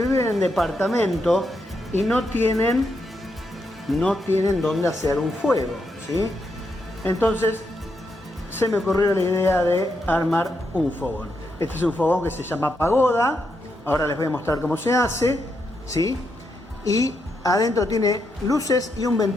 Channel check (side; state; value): both; normal; correlation 0.81